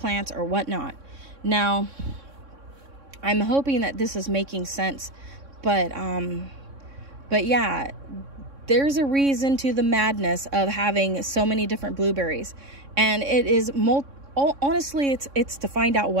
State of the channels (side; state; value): left; late; 3.6 ms